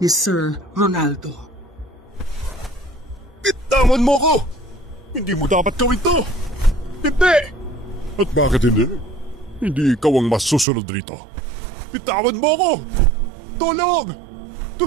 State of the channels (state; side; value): drops out; left; at 10.7 s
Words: Sir Ronaldo. Bitawan mo ko! Hindi mo dapat gawin to! Hindi! At bakit hindi? Hindi ikaw ang masusunod rito. Bitawan mo ko! Tulong!